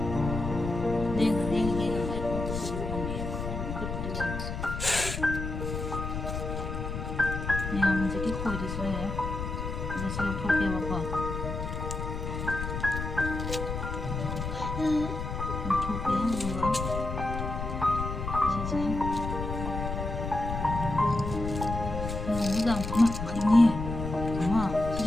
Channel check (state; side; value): noise; left; rumble, 5 dB below the sound